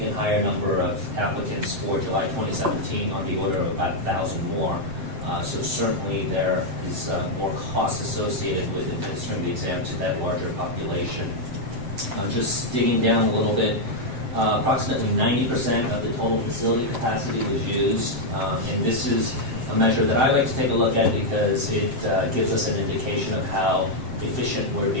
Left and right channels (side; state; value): left; late; 7.7 ms